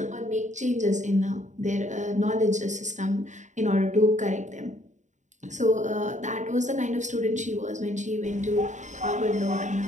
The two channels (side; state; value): left; late; 0.35 ms